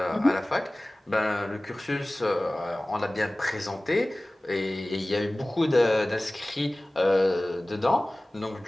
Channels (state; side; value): normal; both; correlation 0.98